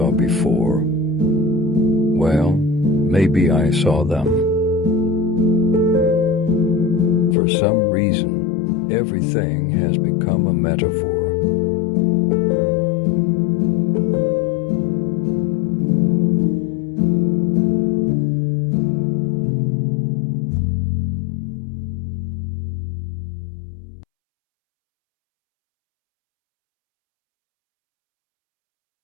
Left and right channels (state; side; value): drops out; right; at 7.4 s